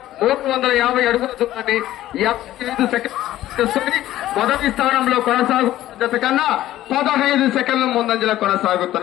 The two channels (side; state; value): right; quieter; 14.1 dB